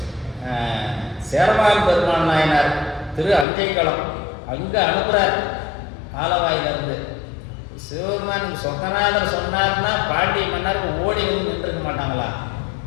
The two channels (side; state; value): right; drops out; at 3.5 s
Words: சேரமான் பெருமான் நாயனார் திரு அஞ்சைக்களம் அங்கே அனுப்புகிறார். ஆலவாயிலிருந்து சிவபெருமான் சொக்கநாதர் சொன்னார்னா பாண்டிய மன்னருக்கு ஓடி வந்து நின்றுருக்க மாட்டாங்களா